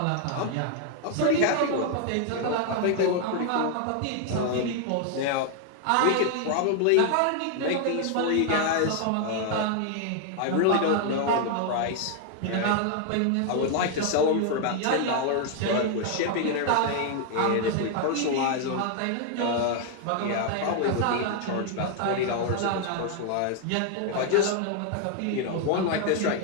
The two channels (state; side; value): different; both; correlation 0.00